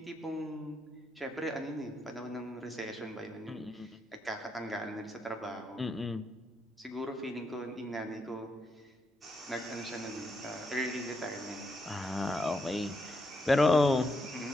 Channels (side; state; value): both; normal; correlation 0.81